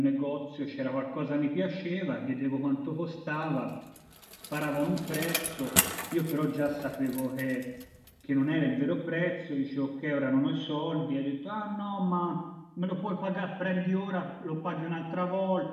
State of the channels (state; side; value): identical; both; correlation 1.00